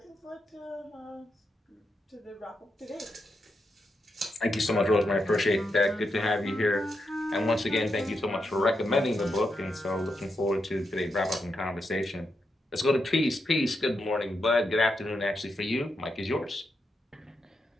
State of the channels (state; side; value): normal; both; correlation 0.84